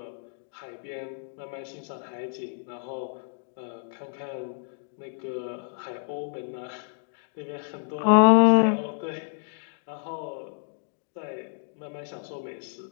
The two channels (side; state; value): right; silent; digital silence